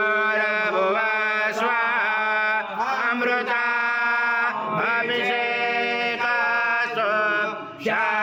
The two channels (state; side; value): identical; both; correlation 1.00